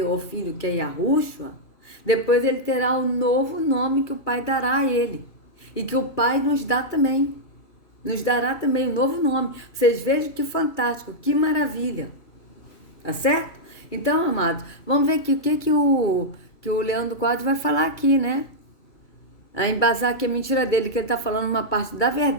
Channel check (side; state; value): right; late; 2.3 ms